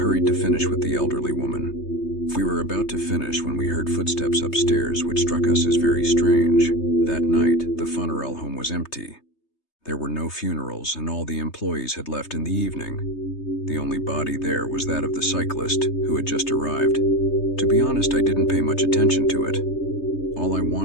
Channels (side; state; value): right; late; 3.3 ms